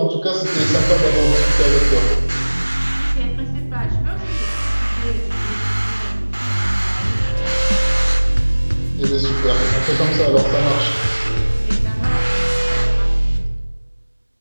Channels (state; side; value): inverted; both; correlation -1.00